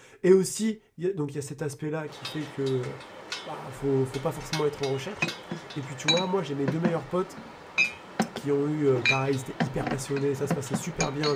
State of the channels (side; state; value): both; identical; correlation 1.00